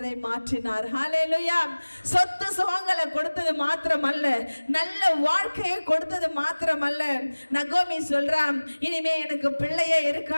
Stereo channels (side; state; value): both; inverted; correlation -1.00